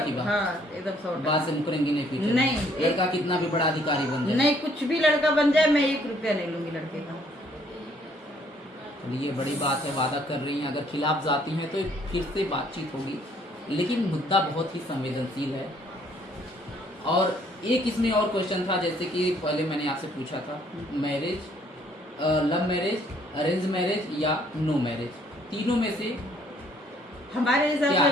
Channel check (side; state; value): both; normal; correlation 0.64